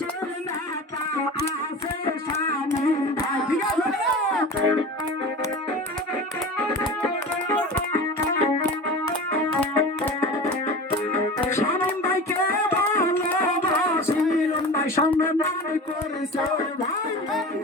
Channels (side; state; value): both; normal; correlation 0.33